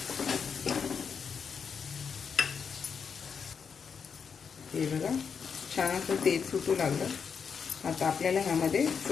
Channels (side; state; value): right; quieter; 6.4 dB